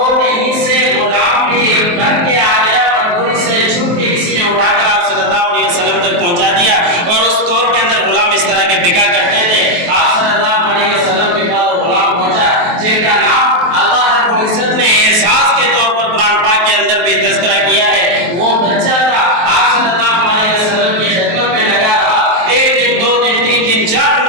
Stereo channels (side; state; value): left; late; 23 ms